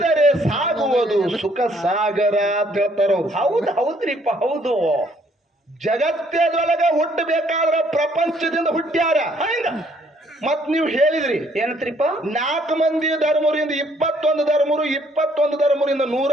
ಸಾಗುವುದು ಸುಖ ಸಾಗರ ಅಂತ ಹೇಳ್ತಾರ. ಹೌದು. ಹೌದ್ರಿಪ್ಪ. ಹೌದು. ಜಗತ್ತದೊಳಗ ಹುಟ್ಟಬೇಕಾದ್ರ ಪ್ರಪಂಚದಿಂದ ಹುಟ್ಟ್ಯಾರ. ಮತ್ ನೀವು ಹೇಳಿದ್ರಿ ಏನತ್ರಿಪ್ಪ? 4 ಮಂದಿ ಧರ್ಮರಿಂದ 21 ಧರ್ಮರು, 21 ಧರ್ಮರಿಂದ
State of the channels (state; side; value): normal; both; correlation 0.65